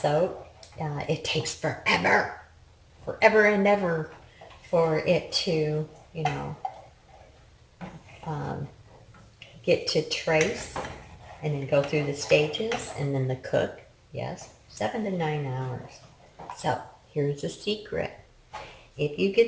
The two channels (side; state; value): both; identical; correlation 1.00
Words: soap, it takes forever and ever for it to, get to trace and then go through the stages and then the cook. Yes, 7 to 9 hours. So here's the secret. If you